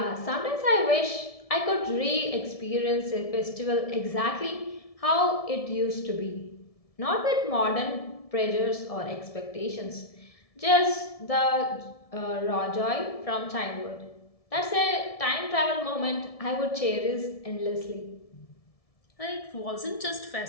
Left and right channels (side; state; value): right; late; 1.7 ms